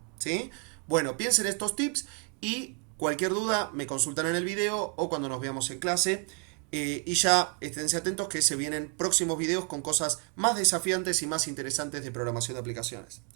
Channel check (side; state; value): left; quieter; 31.6 dB